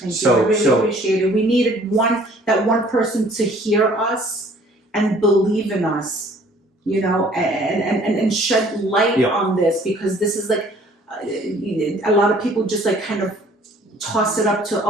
So- you. I really so- appreciate it. We needed that one person to hear us and believe in us, you know, and shed light Yeah. on this because this is like a lot of people just like kind of toss it up to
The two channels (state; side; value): normal; both; correlation 0.56